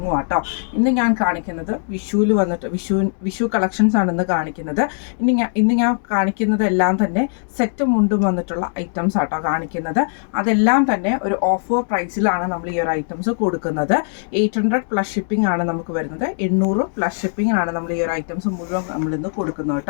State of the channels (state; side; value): silent; right; digital silence